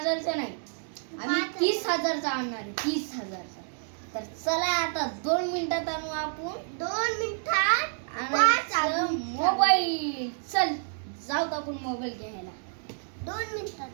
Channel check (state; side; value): silent; left; digital silence